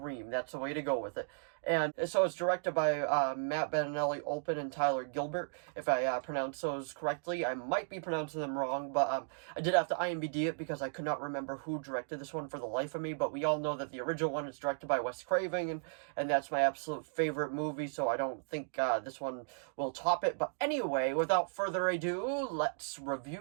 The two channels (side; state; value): left; silent; digital silence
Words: That's the way to go with it. And so it's directed by Matt Bettinelli, Olpin, and Tyler Gilbert. If I pronounce those correctly, I might be pronouncing them wrong, but I did have to IMDb it because I could not remember who directed this one for the life of me. But we all know that the original one is directed by Wes Craven, and that's my absolute favorite movie, so I don't think this one will top it. But anyway, without further ado, let's